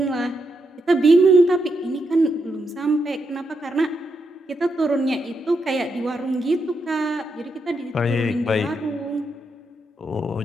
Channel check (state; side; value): normal; both; correlation 0.82